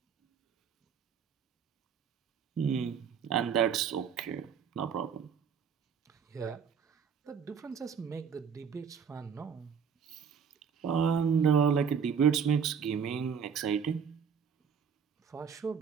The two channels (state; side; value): quieter; left; 6.9 dB